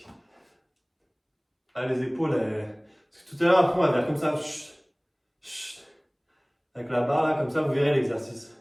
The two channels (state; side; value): identical; both; correlation 1.00